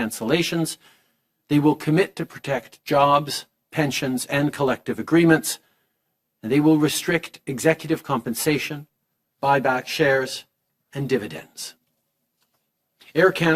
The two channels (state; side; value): identical; both; correlation 1.00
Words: They will commit to protect jobs, pensions, and collective agreements. And they will restrict executive compensation, buy back shares, and dividends. Air